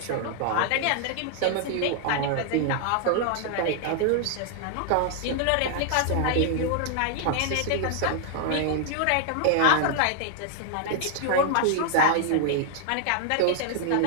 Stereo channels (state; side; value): different; both; correlation 0.00